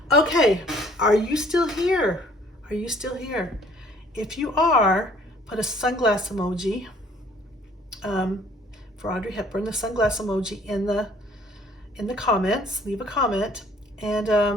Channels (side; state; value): both; normal; correlation 0.58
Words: Okay, are you still here? Are you still here? If you are, put a sunglass emoji for Audrey Hepburn, the sunglass emoji in the comments. Leave a comment, and